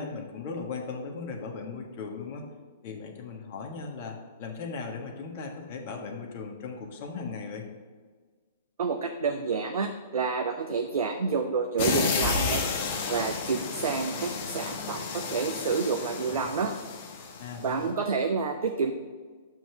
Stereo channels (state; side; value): inverted; both; correlation -0.38